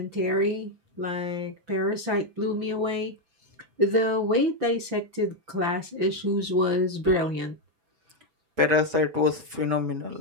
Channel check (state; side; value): late; left; 6.0 ms